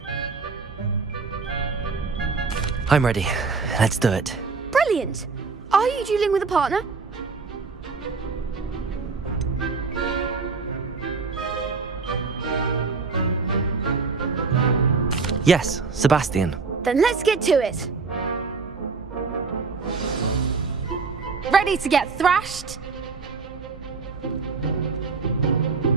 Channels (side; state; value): left; quieter; 4.6 dB